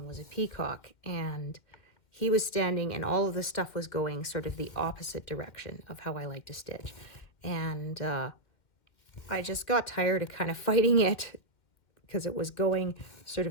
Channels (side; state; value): right; late; 2.4 ms